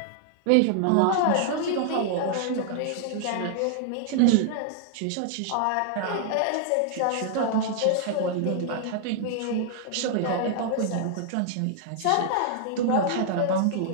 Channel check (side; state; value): both; different; correlation -0.01